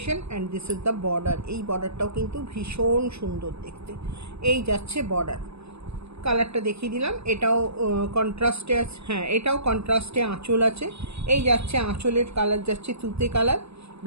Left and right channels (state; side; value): late; left; 0.79 ms